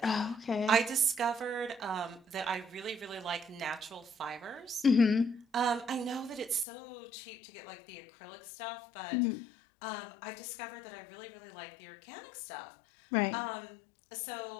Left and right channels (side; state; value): right; drops out; at 6.7 s